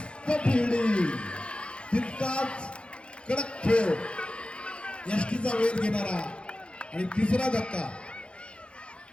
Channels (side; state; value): right; late; 0.057 ms